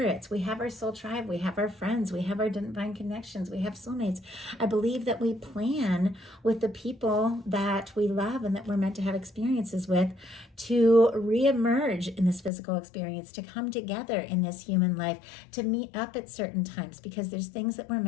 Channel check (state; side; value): drops out; right; at 12.5 s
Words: we have our soul tribe, we have our friends, we have our divine connections, we have soulmates. I believe that we plan again with the people that we love and that we're meant to have experiences with, to reemerge in this physical experience, to come together in this human life, to meet up at certain times, because there's things that we're